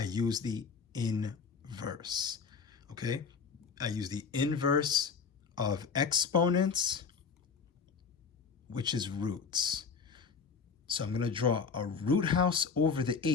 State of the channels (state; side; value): quieter; right; 5.6 dB